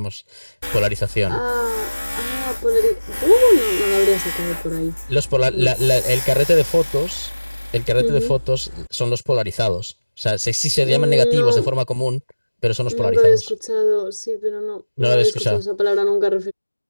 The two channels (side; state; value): both; inverted; correlation -1.00